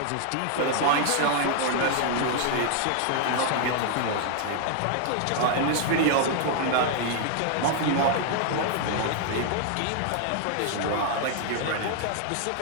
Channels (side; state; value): both; different; correlation 0.00